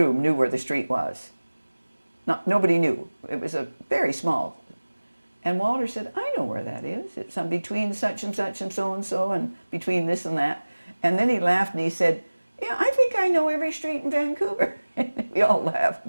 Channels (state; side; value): inverted; both; correlation -1.00